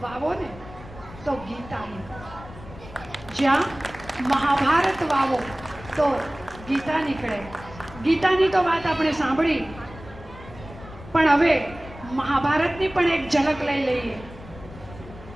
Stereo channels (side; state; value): left; noise; rumble, 17 dB below the sound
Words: વાવો ને તો ગીતા નીકળે. જ્યાં મહાભારત વાવો તો ગીતા નીકળે. ગીતાની તો વાત આપણે સાંભળી, પણ હવે મહાભારતની પણ એક ઝલક લઈ લઈએ.